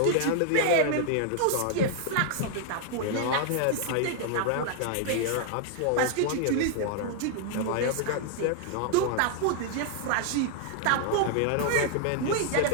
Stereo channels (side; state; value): both; different; correlation 0.00